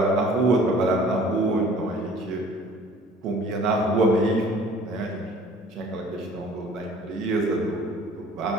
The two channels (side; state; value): both; normal; correlation 0.52